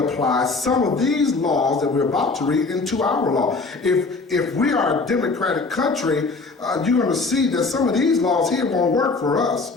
some of these laws that we're about to read into our law. If we are a democratic country, you're going to see that some of these laws here won't work for us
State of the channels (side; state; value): right; quieter; 3.9 dB